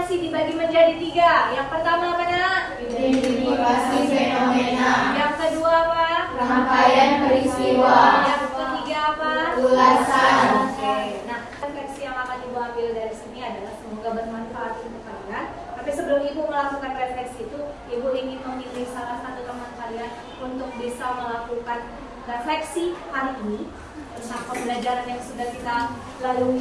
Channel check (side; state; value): both; identical; correlation 1.00